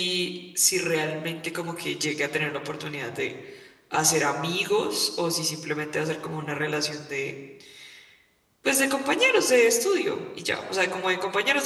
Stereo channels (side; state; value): both; identical; correlation 1.00